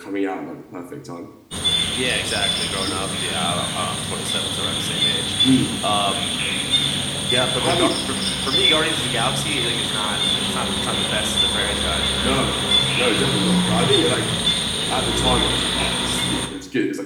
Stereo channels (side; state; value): both; identical; correlation 1.00